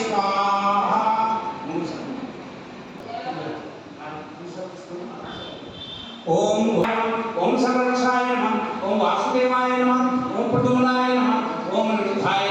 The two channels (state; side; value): identical; both; correlation 1.00